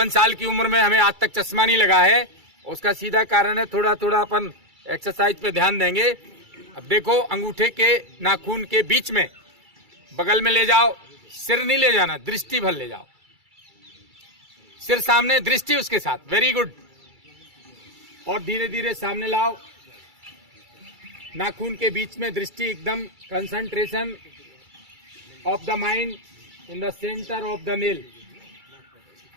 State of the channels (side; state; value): left; late; 2.3 ms